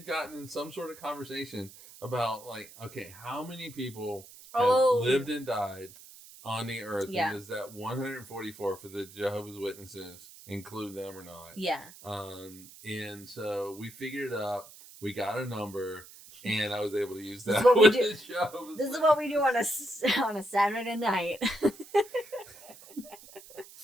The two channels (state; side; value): noise; right; hiss, 19 dB below the sound